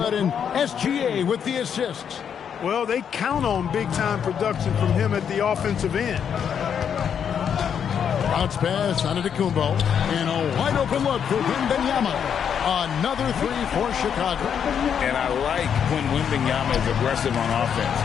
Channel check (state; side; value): quieter; right; 7.9 dB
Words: and SGA with the assists. Well, they count on big-time production from him at the offensive end. Bounce pass on Antetokounmpo, and a wide-open look for Wembanyama. Another 3 for Chicago. And I like when Wembanyama is aggressive on offense